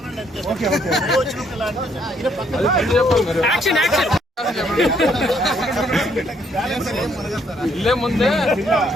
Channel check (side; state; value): both; normal; correlation 0.69